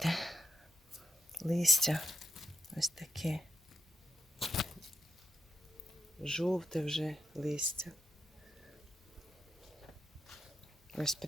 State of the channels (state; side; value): normal; both; correlation 0.83